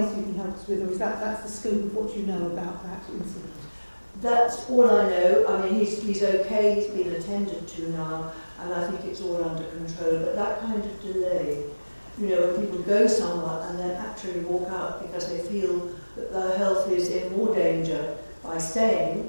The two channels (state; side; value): inverted; both; correlation -1.00